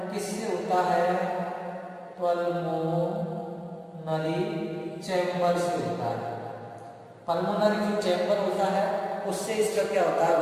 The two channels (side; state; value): both; identical; correlation 1.00